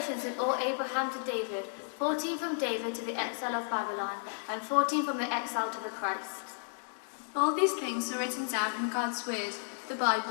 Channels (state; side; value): silent; right; digital silence